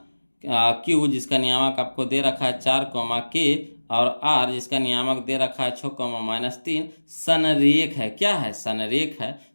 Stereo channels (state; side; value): inverted; both; correlation -1.00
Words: Q जिसका नियामक आपको दे रखा है 4, और R जिसका नियामक दे रखा है 6, -3 संरेख है। क्या है, संरेख है।